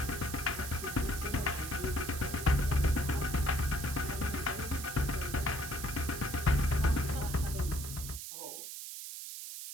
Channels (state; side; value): noise; right; hiss, 8 dB below the sound